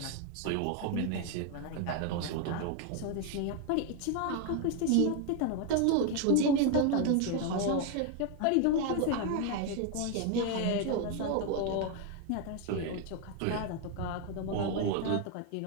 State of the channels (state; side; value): different; both; correlation 0.01